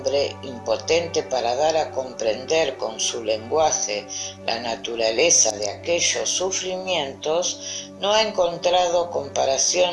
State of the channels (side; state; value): both; identical; correlation 1.00